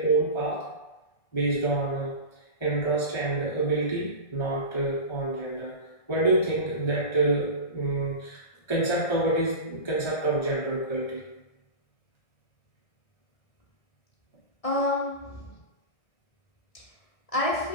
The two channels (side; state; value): right; late; 1.6 ms